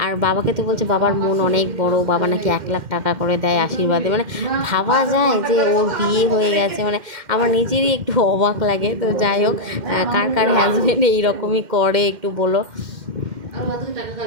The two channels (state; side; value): late; left; 2.1 ms